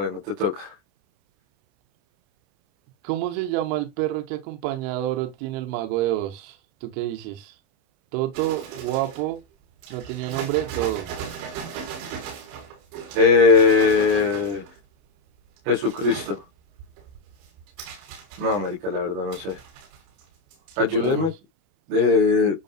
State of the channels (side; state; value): left; late; 30 ms